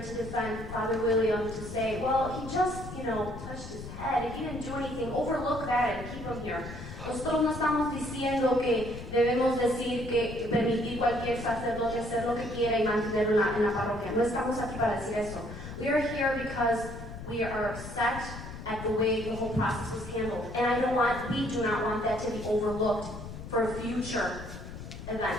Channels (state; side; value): noise; left; rumble, 11 dB below the sound